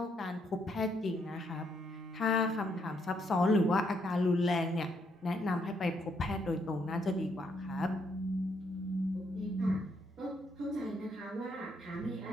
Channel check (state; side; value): normal; both; correlation 0.74